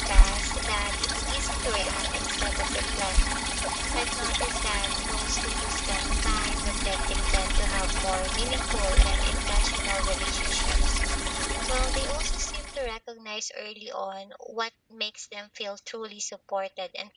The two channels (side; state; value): both; identical; correlation 1.00